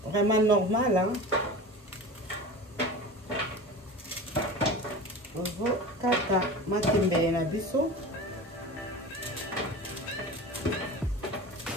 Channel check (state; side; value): normal; both; correlation 0.33